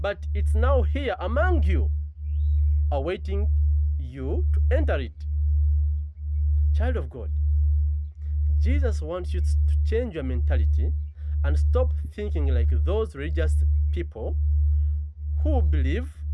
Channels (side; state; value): both; identical; correlation 1.00